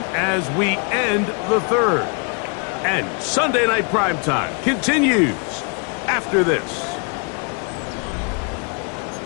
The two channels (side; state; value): right; quieter; 37.1 dB